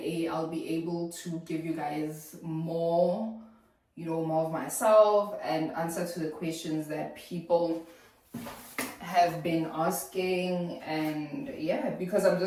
I'll be able to give you guys more, more of myself and answer to the questions that people have been asking. And yeah, because I'm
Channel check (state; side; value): identical; both; correlation 1.00